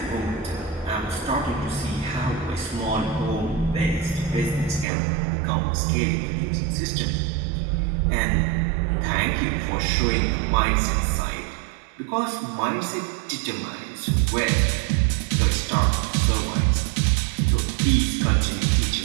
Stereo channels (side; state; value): left; drops out; at 4.9 s